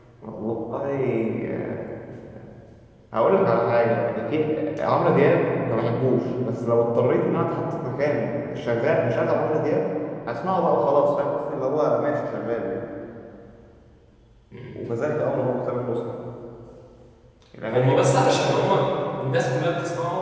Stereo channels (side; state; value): both; identical; correlation 1.00